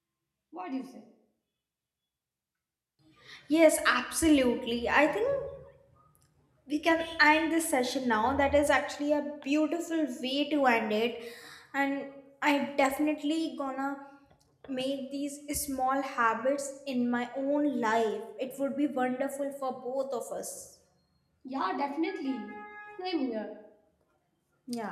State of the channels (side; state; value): both; identical; correlation 1.00